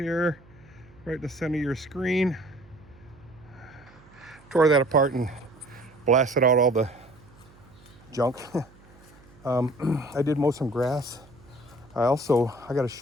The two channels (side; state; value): right; noise; hum, 25 dB below the sound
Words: right in the center of your screen. Tore that apart and blasted out all the junk. I did mow some grass. I got to